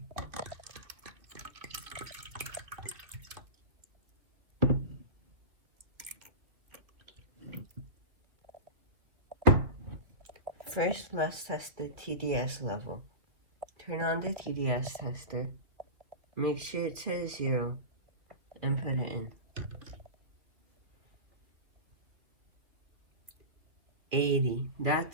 First, let's test the TDS level. Turn on the TDS tester. Make sure it says 0 and put it in. 80.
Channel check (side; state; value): left; late; 2.9 ms